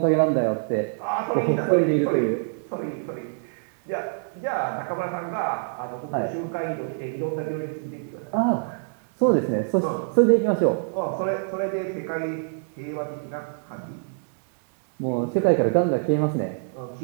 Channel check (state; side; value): silent; left; digital silence